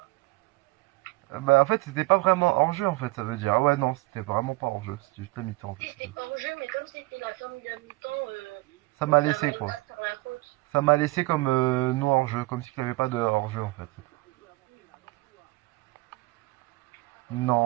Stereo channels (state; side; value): quieter; left; 21.9 dB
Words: Bah, en fait, c'était pas vraiment hors-jeu, en fait, ça veut dire. Ah ouais, non, c'était vraiment pas hors-jeu. C'était juste la mi-temps, en Si, fait. c'était hors-jeu, mais comme c'était la fin de la mi-temps, Ça m'a ça laissé, va quoi. pas sur la faute. Ça m'a laissé comme non hors-jeu. Comme s'il n'y avait pas de hors-jeu, en fait.